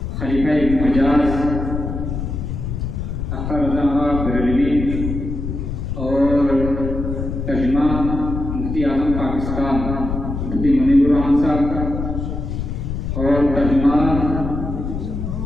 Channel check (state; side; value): noise; left; rumble, 4 dB below the sound